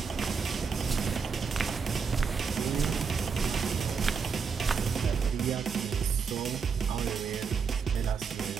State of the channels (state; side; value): quieter; left; 5.7 dB